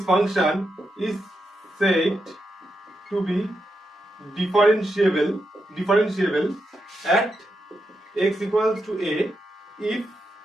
function is said to be differentiable at x equals to a if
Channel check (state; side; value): normal; both; correlation 0.85